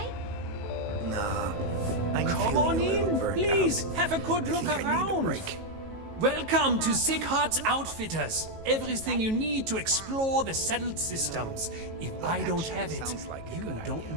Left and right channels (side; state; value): left; late; 18 ms